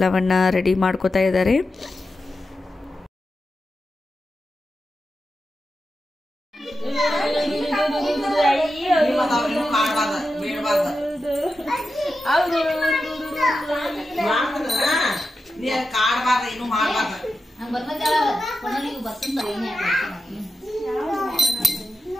ರೆಡಿ ಮಾಡ್ಕೋತಾ ಇದ್ದಾರೆ.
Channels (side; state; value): both; normal; correlation 0.90